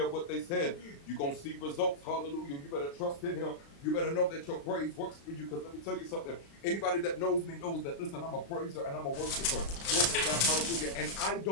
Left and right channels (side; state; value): right; late; 36 ms